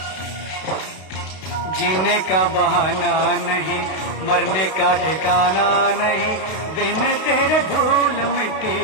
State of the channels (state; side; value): late; right; 32 ms